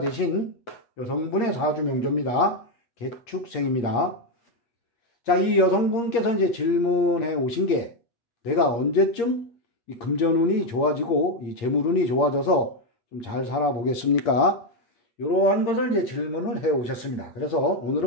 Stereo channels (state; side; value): late; right; 8.6 ms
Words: 여성분의 사주 명조입니다. 개축생입니다. 자, 이 여성분께서 이제 질문해 오신 게 내가 언제쯤 이 금전운이 좋아지고 이 재물운이 좋아져서 좀 잘 살아보겠습니까? 이러한 것을 이제 질문을 해 오셨습니다. 그래서